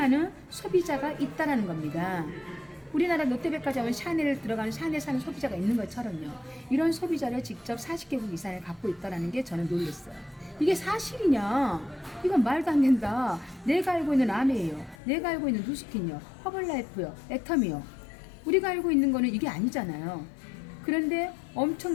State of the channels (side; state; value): right; drops out; at 15.0 s